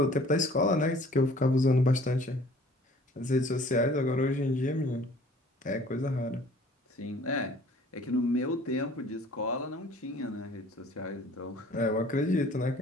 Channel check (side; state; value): both; normal; correlation 0.52